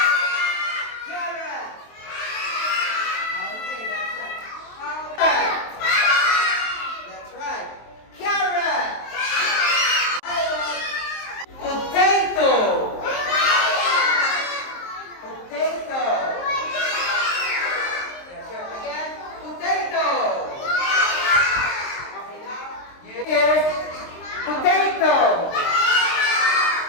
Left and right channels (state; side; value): late; right; 23 ms